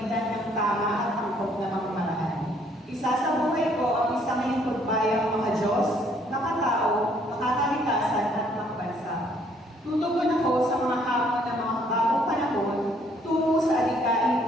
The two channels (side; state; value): both; normal; correlation 0.64